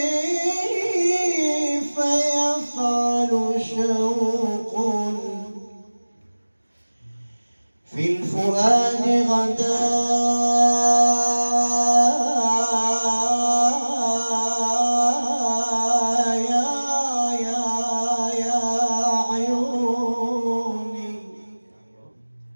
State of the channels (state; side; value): inverted; both; correlation -1.00